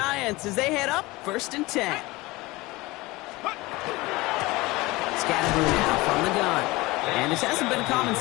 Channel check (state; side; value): quieter; right; 21.4 dB